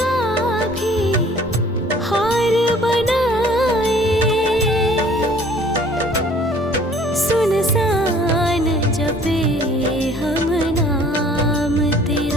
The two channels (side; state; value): both; normal; correlation 0.54